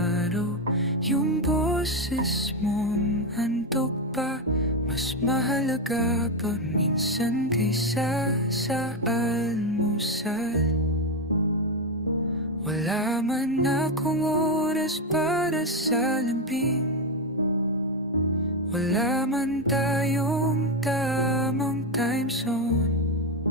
Yung boses mong handog pa, mas mahalaga pa minsan kaysa sa almusal. Wala man akong oras para sa lambing, wala man tayong tamang time zone.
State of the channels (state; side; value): normal; both; correlation 0.09